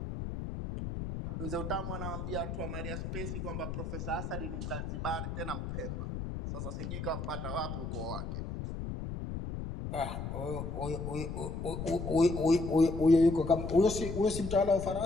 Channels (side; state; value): left; noise; rumble, 5 dB below the sound